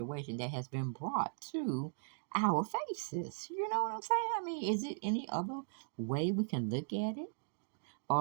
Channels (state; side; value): silent; left; digital silence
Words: that has been brought to our faces. You know what I'm saying? I mean, is it any other way we can look at it?